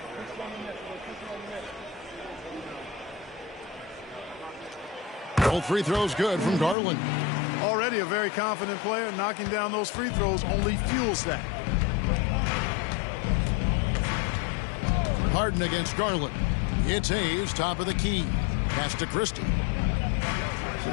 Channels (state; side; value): drops out; right; at 6.8 s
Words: Both free throws good from Garland. Already a very confident player. Knocking down those free throws only fuels that. Harden against Garland. It's Hayes, top of the key. Pass to Christie. It's